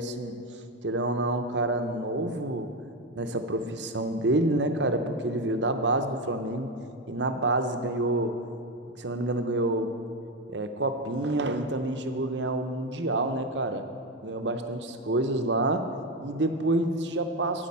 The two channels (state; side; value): normal; both; correlation 0.13